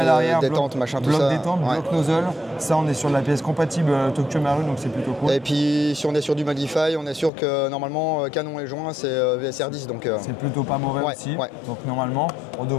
machin, tout ça. Bloc détente, bloc nozzle. Ça, on est sur la pièce compatible Tokyo Marui, donc c'est plutôt cool. Et puis, si on est sur du Modify, on est sûr que normalement, canon et joint, c'est VSR10. Donc c'est plutôt pas mauvais aussi. Ouais. Donc normalement, on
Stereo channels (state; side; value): drops out; right; at 7.3 s